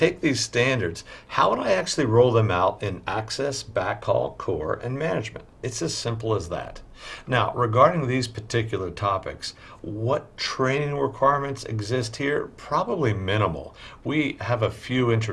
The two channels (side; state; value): both; identical; correlation 1.00